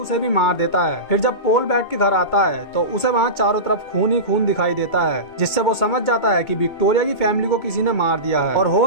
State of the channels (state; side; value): late; right; 2.2 ms